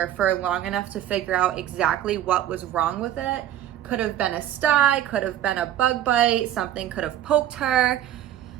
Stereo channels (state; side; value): quieter; left; 11.7 dB